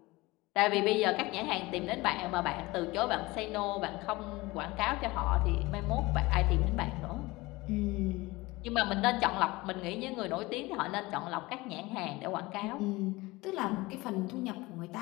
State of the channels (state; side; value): quieter; right; 21.5 dB